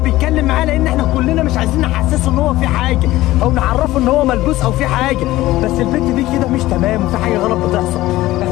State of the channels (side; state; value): right; quieter; 16.7 dB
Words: معاه لان احنا كلنا مش عايزين نحسسه ان هو في حاجه او نعرفه ان هو ملبوس او في حاجه. بس البت دي كده مش تمام وفي حاجه غلط بتحصل.